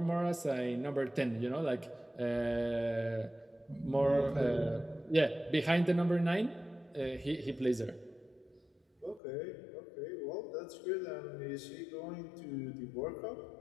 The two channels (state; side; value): drops out; right; at 9.2 s